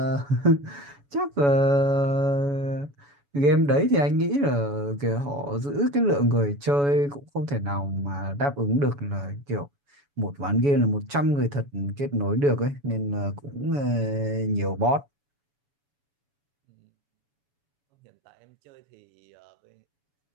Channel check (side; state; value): left; late; 7.1 ms